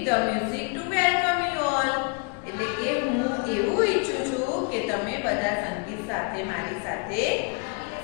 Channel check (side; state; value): right; quieter; 36.1 dB